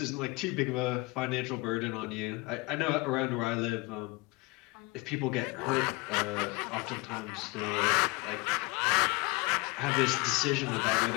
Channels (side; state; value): right; quieter; 25.0 dB